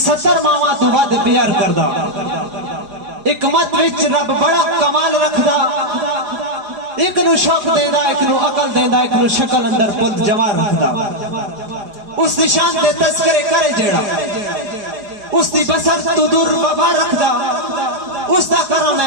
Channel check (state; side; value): late; left; 4.8 ms